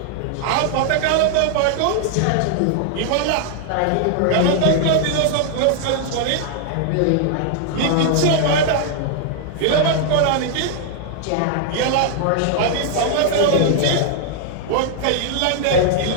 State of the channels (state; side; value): different; both; correlation -0.01